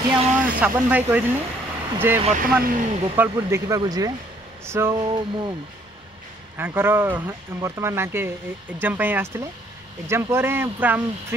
ये आम साबन भाई कही जे वर्तमान गोपालपुर देखा जी। सो मुझर वर्तमान नाके एग्जाम आसते एग्जाम पर पूरा आम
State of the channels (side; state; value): both; normal; correlation 0.64